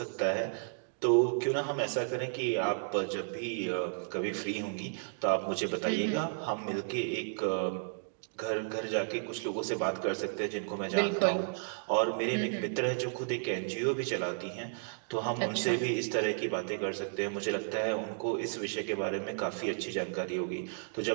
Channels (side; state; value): left; silent; digital silence